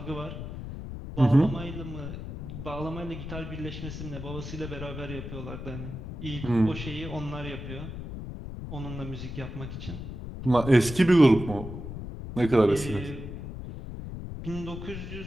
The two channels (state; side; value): noise; left; rumble, 8 dB below the sound